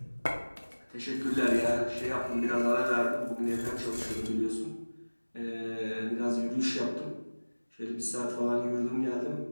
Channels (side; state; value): both; inverted; correlation -1.00